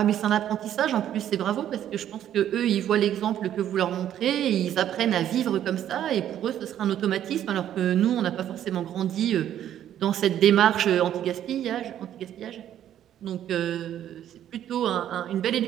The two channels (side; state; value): left; quieter; 10.9 dB